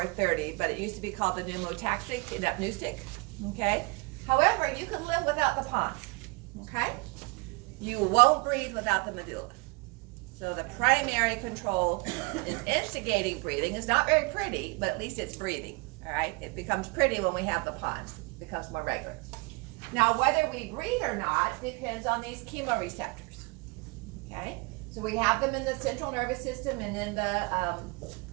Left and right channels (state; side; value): quieter; left; 27.3 dB